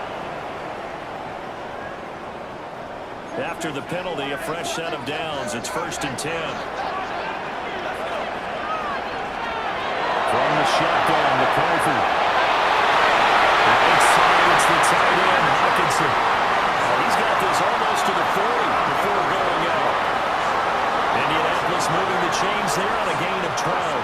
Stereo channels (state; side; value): identical; both; correlation 1.00